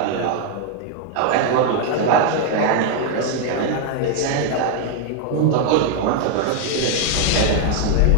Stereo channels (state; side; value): different; both; correlation 0.00